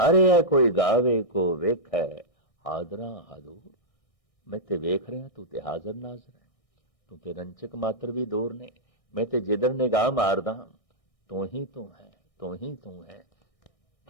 रहा कोई गावे को वेख है हादरा हादूर। मैं ते वेख रहा, तू ते हाजर नाजर है, तू ते रंचक मात्र भी दूर ने, मैं ते जिधर निगाह मारदा तू ही तू है, तू ही तू है,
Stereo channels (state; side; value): late; right; 1.6 ms